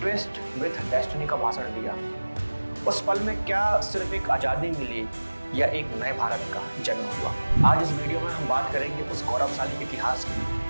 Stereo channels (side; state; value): both; inverted; correlation -1.00